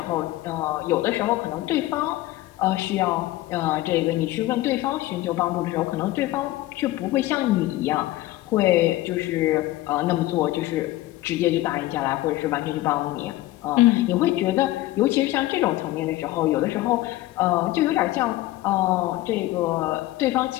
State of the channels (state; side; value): quieter; right; 16.7 dB